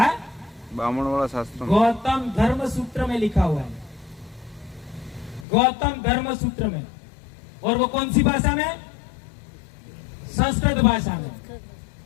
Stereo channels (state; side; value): drops out; right; at 5.5 s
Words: ब्राह्मण वाला शास्त्र में। गौतम धर्म सूत्र में लिखा हुआ है, गौतम धर्म सूत्र में। और वो कौन सी भाषा में? संस्कृत भाषा में,